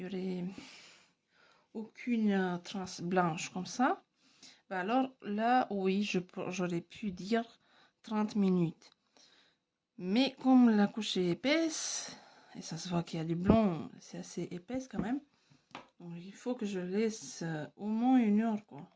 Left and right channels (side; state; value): both; identical; correlation 1.00